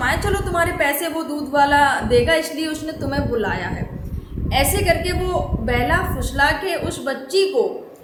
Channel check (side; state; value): both; identical; correlation 1.00